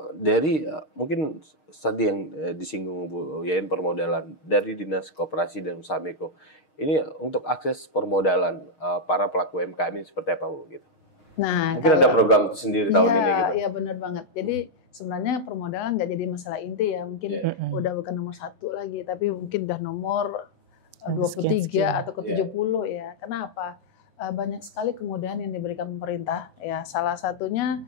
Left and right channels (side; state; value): right; late; 6.4 ms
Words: dari mungkin tadi yang disinggung Bu Yayan permodalan dari Dinas Koperasi dan Usaha Mikro, ini untuk akses permodalan para pelaku UMKM ini seperti apa Bu? Gitu. Nah, mungkin ada program itu sendiri tahun ini gitu. Iya benar banget. Jadi sebenarnya permodalan nggak jadi masalah inti ya, mungkin udah bukan nomor 1 lagi, tapi mungkin udah nomor 23 atau ke-70 ya. Kenapa? Banyak sekali kemudahan yang diberikan pemerintah ya. Salah satunya